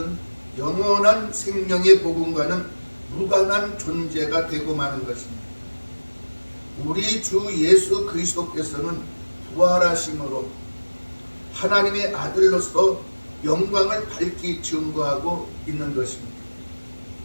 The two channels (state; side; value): inverted; both; correlation -1.00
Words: 영원한 생명의 복음과는 무관한 존재가 되고 마는 것입니다. 우리 주 예수 그리스도께서는 부활하심으로 하나님의 아들로서 영광을 밝히 증거하고 있는 것입니다.